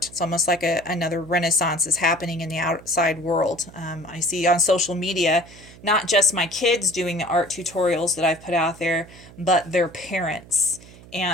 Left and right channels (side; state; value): right; noise; hum, 21 dB below the sound